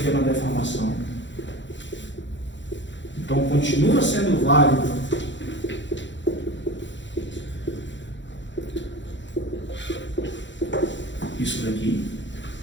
deformação. Então continua sendo válido isso daqui.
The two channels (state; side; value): late; right; 0.53 ms